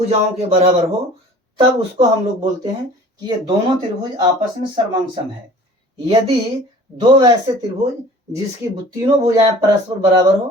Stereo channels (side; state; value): both; normal; correlation 0.47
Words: के बराबर हो, तब उसको हम लोग बोलते हैं कि ये दोनों त्रिभुज आपस में सर्वांगसम है। यदि दो वैसे त्रिभुज जिसकी तीनों भुजाएं परस्पर बराबर